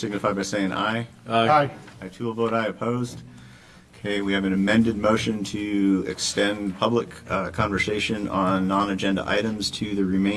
by saying aye. Aye. I too will vote aye. Opposed? Okay, we have an amended motion to extend public conversation on non-agenda items to the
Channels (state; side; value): identical; both; correlation 1.00